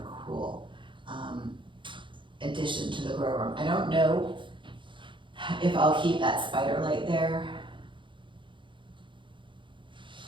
a cool addition to the grow room. I don't know if I'll keep that spider light there.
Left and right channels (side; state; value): left; late; 0.24 ms